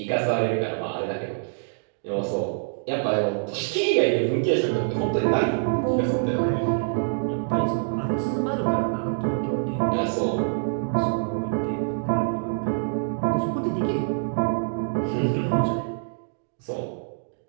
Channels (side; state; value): left; silent; digital silence